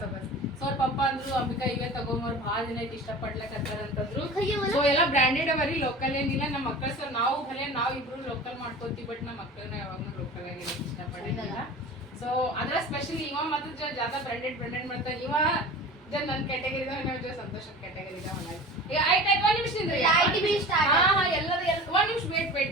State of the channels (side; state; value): both; normal; correlation 0.37